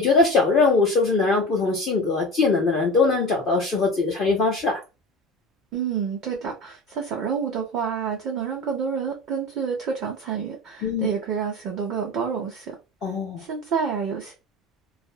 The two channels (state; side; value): normal; both; correlation 0.31